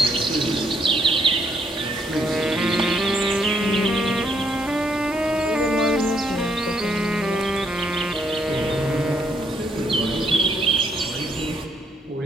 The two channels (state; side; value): normal; both; correlation 0.71